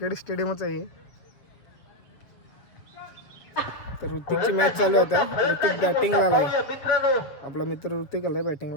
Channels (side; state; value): right; late; 7.4 ms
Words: स्टेडियमच आहे. तर ऋतिकची मॅच चालू आहे आता. ऋतिक बॅटिंगला आलाय, आपला मित्र ऋतिक आलाय